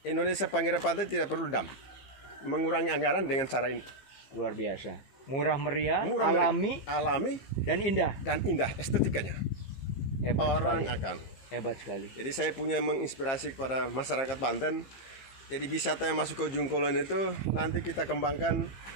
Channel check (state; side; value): late; right; 15 ms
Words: Indonesia Pinggiran Pantai tidak perlu dam. Mengurangi anggaran dengan cara ini. Luar biasa. Murah meriah, Murah, alami dan indah estetikanya. Hebat Orang sekali. akan. Hebat sekali. Jadi saya punya menginspirasi kepada masyarakat Banten. Jadi wisata yang masuk ke Ujung Kulon itu nanti kita kembangkan